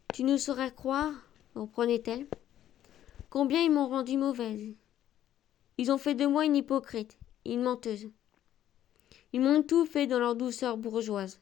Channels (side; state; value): right; quieter; 11.7 dB